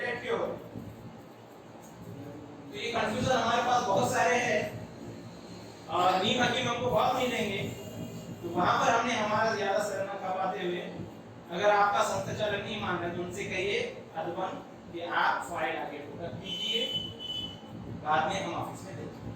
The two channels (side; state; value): both; identical; correlation 1.00